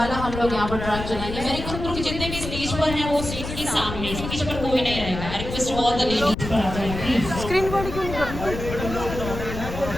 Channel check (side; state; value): left; noise; rumble, 7 dB below the sound